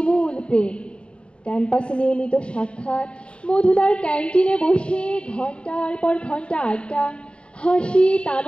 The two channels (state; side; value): late; right; 0.056 ms